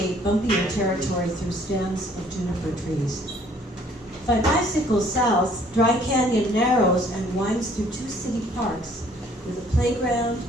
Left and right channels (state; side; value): normal; both; correlation 0.59